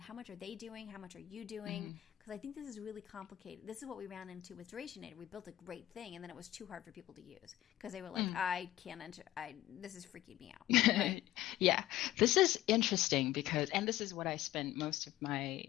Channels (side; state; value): right; quieter; 14.9 dB